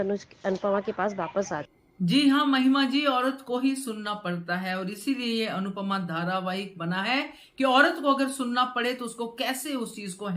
के पास वापस आ जाए। जी हाँ महिमा जी, औरत को ही सुनना पड़ता है और इसीलिए ये अनुपमा धारावाहिक बना है कि औरत को अगर सुनना पड़े तो उसको कैसे उस चीज को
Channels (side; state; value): both; identical; correlation 1.00